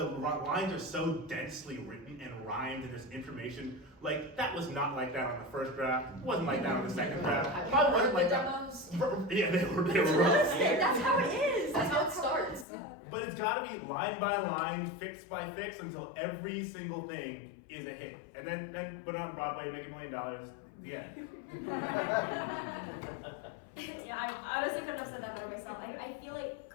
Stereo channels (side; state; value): right; drops out; at 12.7 s